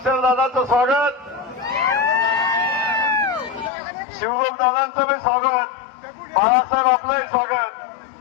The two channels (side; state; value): right; drops out; at 3.7 s